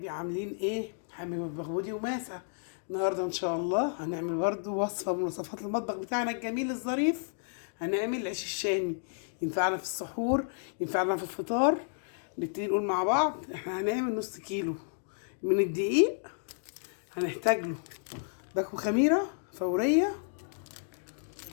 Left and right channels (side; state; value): right; silent; digital silence